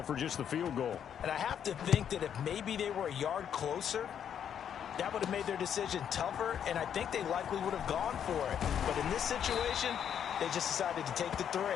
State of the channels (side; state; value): right; quieter; 8.8 dB